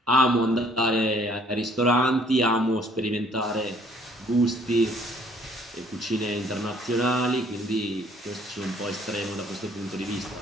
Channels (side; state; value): both; normal; correlation 0.60